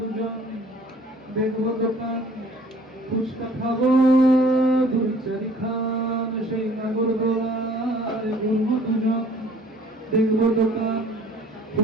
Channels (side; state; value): both; normal; correlation 0.54